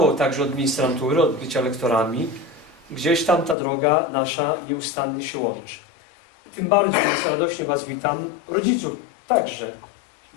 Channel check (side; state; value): right; drops out; at 3.6 s